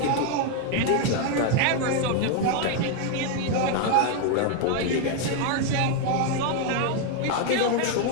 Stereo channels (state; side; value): different; both; correlation 0.01